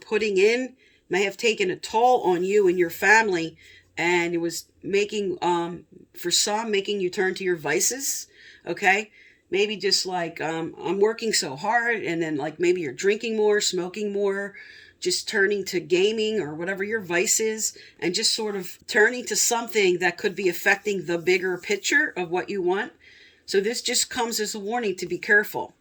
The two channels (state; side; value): identical; both; correlation 1.00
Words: in may have taken a toll on you and your family, and it was making, for some, making you turn to your vices. Okay, maybe just like, I'm working so hard, and then like maybe you're drinking more, smoking more, just turning to gaming or whatever your vice is, and just sort of turning to something that could be affecting the bigger picture of what you want. So this just comes as a warning to be careful,